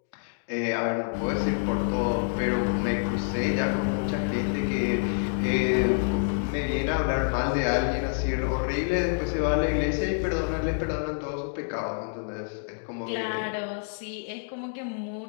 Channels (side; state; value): right; silent; digital silence